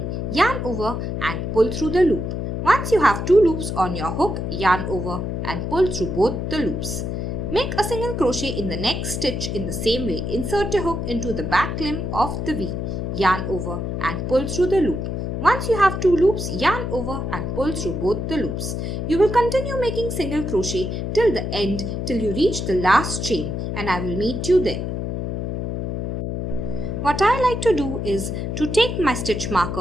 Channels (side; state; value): left; noise; hum, 3 dB below the sound